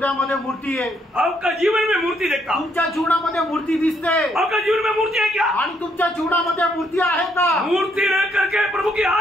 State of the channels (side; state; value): both; normal; correlation 0.72